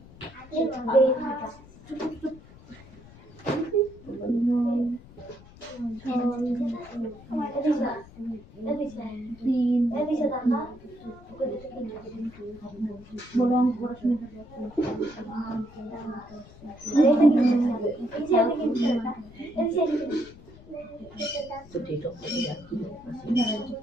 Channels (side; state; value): left; noise; rumble, 21 dB below the sound